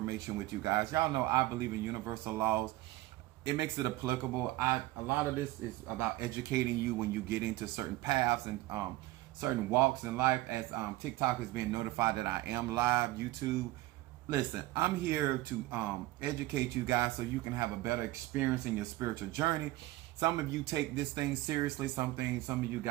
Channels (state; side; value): quieter; left; 18.0 dB